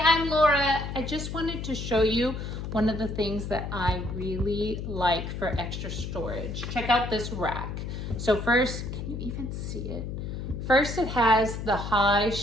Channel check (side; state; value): left; noise; hum, 6 dB below the sound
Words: I'm Laura. I just wanted to show you one of the things that I really like for extra storage. Check out this rack. So first, can you even see it? First, it has the high